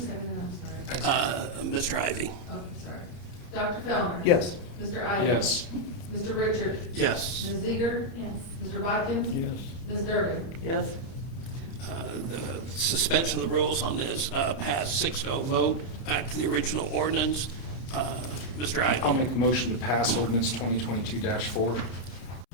I'm sorry? Mr. Ivy? Okay, sorry. Dr. Fellner? Yes. Mr. Ivy? Yes. Mr. Richard? Yes. Ms. Ziegler? Yes. Mr. Bodkins? Ms. Durbin? Yes. The suspension of the rules on this passed 6-0 vote. Back to the original ordinance. Mr. Ivy? I'll make a motion to pass ordinance 2022-4.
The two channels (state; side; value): late; right; 30 ms